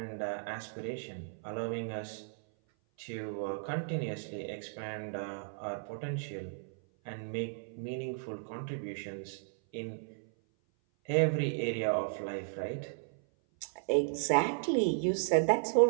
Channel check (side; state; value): left; silent; 55 dB below the other